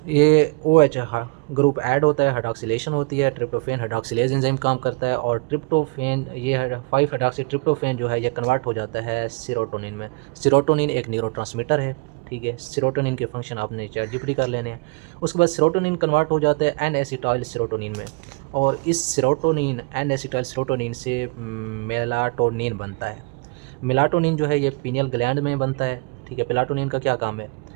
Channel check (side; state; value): left; quieter; 29.4 dB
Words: ये OH ग्रुप ऐड होता है, हाइड्रॉक्सिलेशन होती है, ट्रिप्टोफैन हाइड्रॉक्सिलेज एंजाइम काम करता है, और ट्रिप्टोफैन ये 5 हाइड्रॉक्सी ट्रिप्टोफैन जो है ये कन्वर्ट हो जाता है सेरोटोनिन में। सेरोटोनिन एक न्यूरोट्रांसमीटर है, ठीक है। सेरोटोनिन के फंक्शन आपने ChatGPT कर लेने हैं। उसके बाद सेरोटोनिन कन्वर्ट हो जाता है एन एसिटाइल सेरोटोनिन में, और इस सेरोटोनिन एन एसिटाइल सेरोटोनिन से मेलाटोनिन बनता है। मेलाटोनिन जो है ये पीनियल ग्लैंड में बनता है, ठीक है। मेलाटोनिन का क्या काम है,